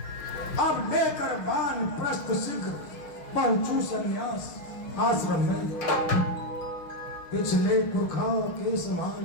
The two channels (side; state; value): right; late; 6.6 ms